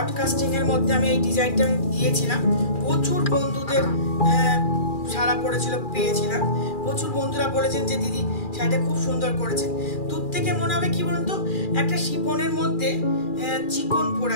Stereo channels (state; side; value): late; right; 2.4 ms